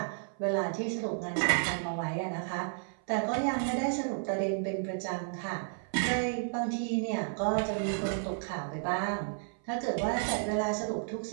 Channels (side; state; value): left; silent; 56 dB below the other